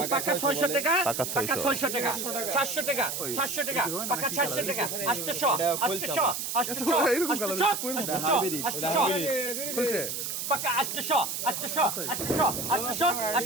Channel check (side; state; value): right; noise; hiss, 4 dB below the sound